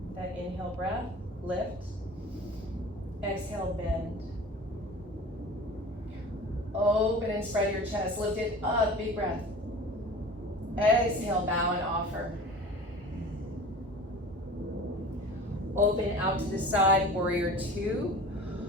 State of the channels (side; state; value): both; normal; correlation 0.40